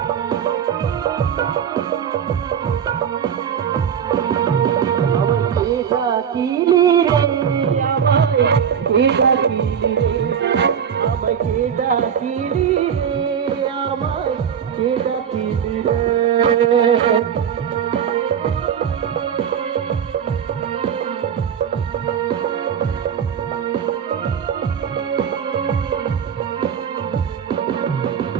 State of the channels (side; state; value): left; quieter; 8.1 dB